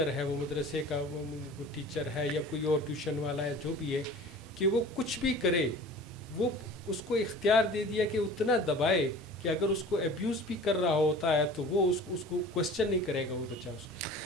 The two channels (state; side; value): normal; both; correlation 0.42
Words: ہے، وہ مدرسے کا وہ ٹیچر ہے یا کوئی اور ٹیوشن والا ہے، جو بھی ہے، کہ وہ کچھ بھی کرے، وہ اس کو اختیار دے دیا کہ اتنا دبائے کہ اگر اس کو ابیوز بھی کر رہا ہوتا ہے تو وہ اس کو کوشچن نہیں کرے گا وہ بچہ اس کو،